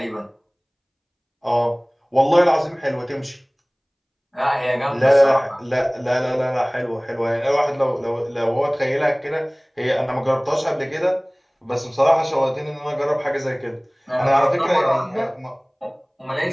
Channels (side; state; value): both; identical; correlation 1.00